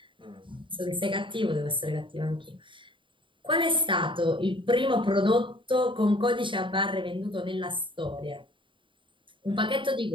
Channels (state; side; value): late; left; 0.24 ms